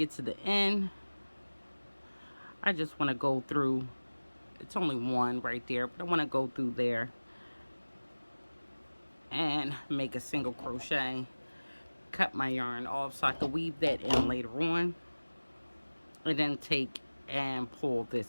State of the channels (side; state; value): both; inverted; correlation -1.00